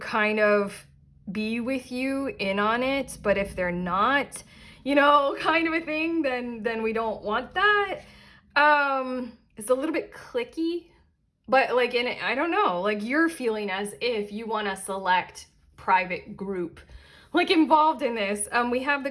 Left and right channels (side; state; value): both; identical; correlation 1.00